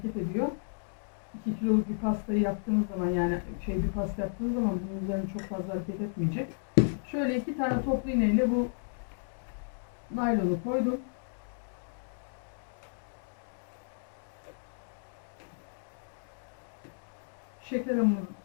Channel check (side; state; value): right; silent; digital silence